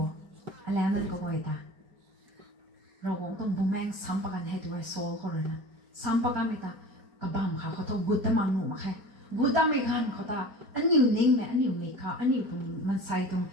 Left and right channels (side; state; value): left; late; 4.3 ms